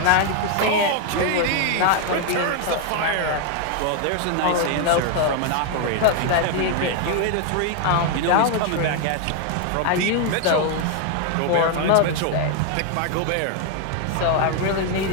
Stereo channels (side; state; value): both; different; correlation 0.00